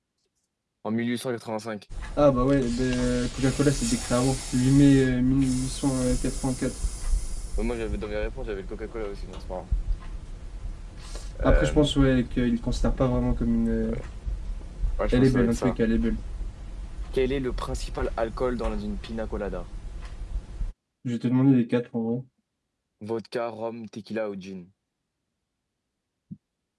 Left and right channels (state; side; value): identical; both; correlation 1.00